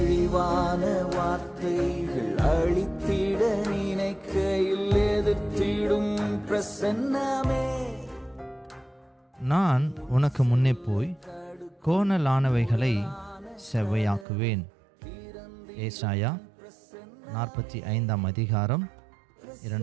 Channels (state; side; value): drops out; left; at 14.2 s